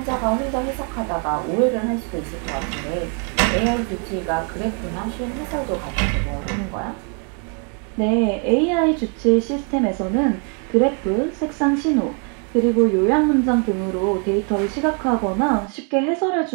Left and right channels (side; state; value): left; quieter; 39.5 dB